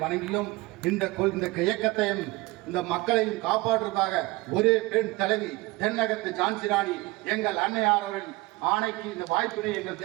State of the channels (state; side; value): quieter; left; 21.2 dB